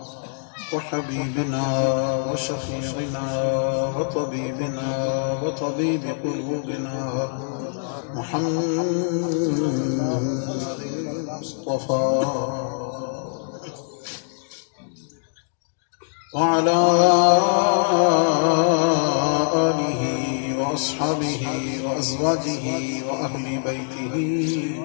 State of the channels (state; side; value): silent; right; digital silence